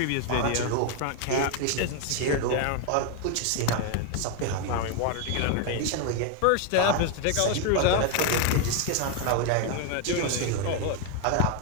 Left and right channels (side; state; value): both; different; correlation 0.01